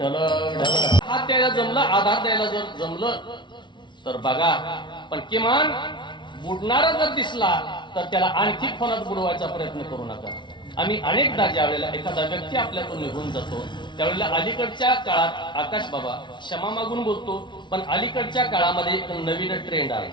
हात द्यायला जमलं, आधार द्यायला जर जमलं तर बघा, पण किमान बुडणारा जर दिसला तर त्याला आणखी खोलात बुडवायचा प्रयत्न करू नका. आम्ही अनेकदा ज्या वेळेला एखादा व्यक्ती आपल्यातून निघून जातो त्यावेळेला अलीकडच्या काळात, आकाश बाबा क्षमा मागून बोलतो, पण अलीकडच्या काळामध्ये एक नवीन ट्रेंड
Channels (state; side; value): late; right; 0.23 ms